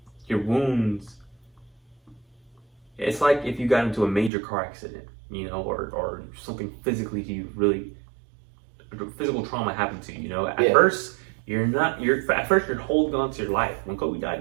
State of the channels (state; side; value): drops out; left; at 4.3 s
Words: your wounds, it's like if you got into a major car accident, or something physically to you, really physical trauma happened to you, At first you're holding on to your life. When Kobe